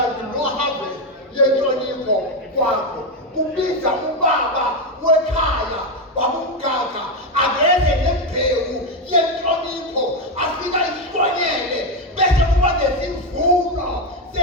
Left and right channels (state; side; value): normal; both; correlation 0.09